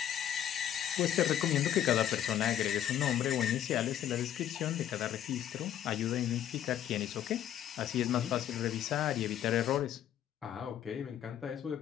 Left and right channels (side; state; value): right; quieter; 10.7 dB